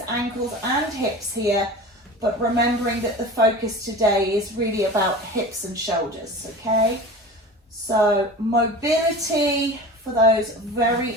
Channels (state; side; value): normal; both; correlation 0.35